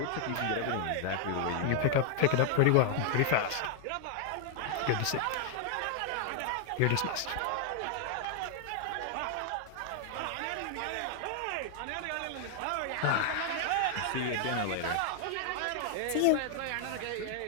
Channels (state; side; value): different; both; correlation 0.00